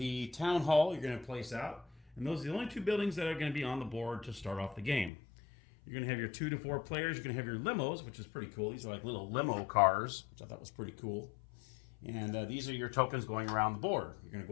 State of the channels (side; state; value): right; drops out; at 5.1 s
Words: town hall you're going to place out, and those are the only two buildings that are going to be on the board to start off the game. You're going to have your 2 to 4 players. You're going to have your limos, which is pretty cool. These are like little limo cars, which I thought was pretty cool. And these are your tokens going around the board. You're going to